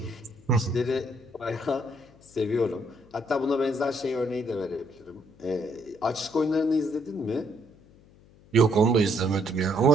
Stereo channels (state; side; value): noise; left; hum, 26 dB below the sound